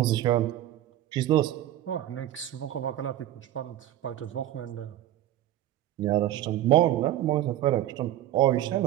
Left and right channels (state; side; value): quieter; left; 13.0 dB